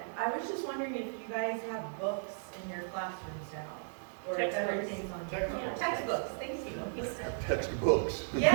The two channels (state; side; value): silent; left; digital silence